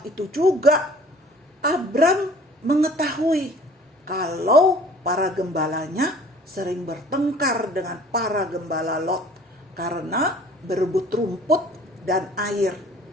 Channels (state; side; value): normal; both; correlation 0.51